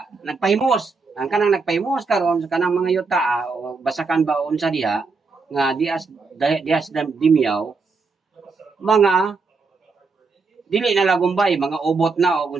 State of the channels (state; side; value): quieter; left; 4.3 dB